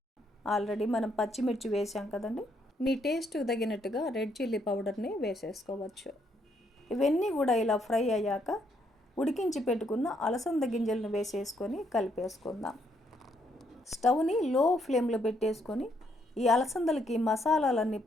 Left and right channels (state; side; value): normal; both; correlation 0.73